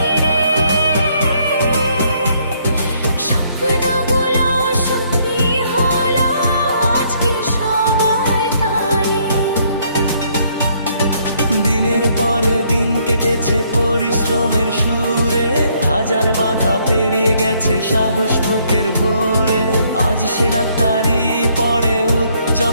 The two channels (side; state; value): both; inverted; correlation -0.68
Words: স্বপ্নগুলো সত্যি হলো আজকে সবার টানে। দিনের পরে দিন কেটেছে পরিশ্রমের সুরে, হাজার বাধা পেরিয়ে গেছে সাহস বুকের ভোরে। আজ সে ডাক্তারি পড়ে